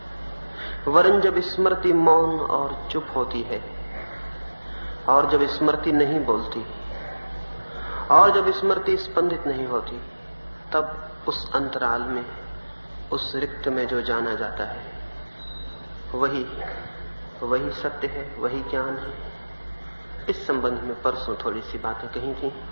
वरन जब स्मृति मौन और चुप होती है, और जब स्मृति नहीं बोलती, और जब स्मृति स्पंदित नहीं होती, तब उस अंतराल में, उस रिक्त में जो जाना जाता है, वही सत्य है, वही ज्ञान है। इस संबंध में परसों थोड़ी सी बातें कही थी,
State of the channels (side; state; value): both; inverted; correlation -1.00